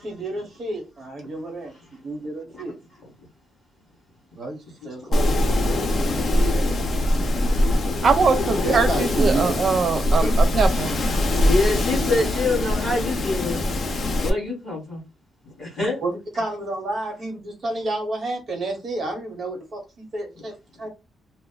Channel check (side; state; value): both; normal; correlation 0.83